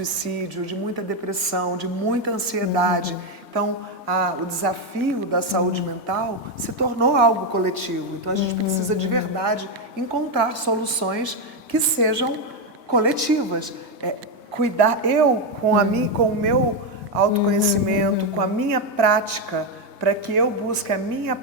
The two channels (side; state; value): both; normal; correlation 0.06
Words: de muita depressão, de muita ansiedade. Então, o desafio da saúde mental se tornou algo coletivo. Então, a gente precisa de verdade encontrar soluções que sejam coletivas. Cuidar com o meu autoconhecimento, com a minha prática, para que eu busque a minha